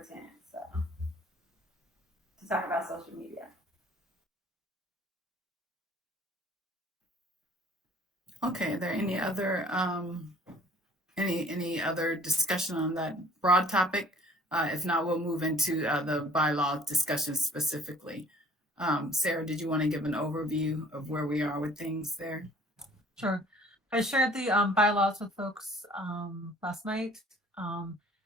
10th, so to talk about social media. Okay, are there any other any other discussion on that broad topic? If not, we'll move into the bylaw discussion specifically. Sarah, did you want to give an overview of where we are with things there? Sure. I shared the bylaws with folks last night.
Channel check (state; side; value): normal; both; correlation 0.54